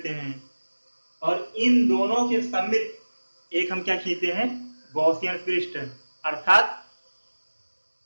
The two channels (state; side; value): inverted; both; correlation -1.00